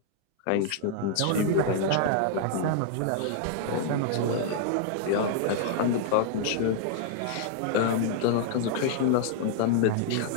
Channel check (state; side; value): different; both; correlation -0.01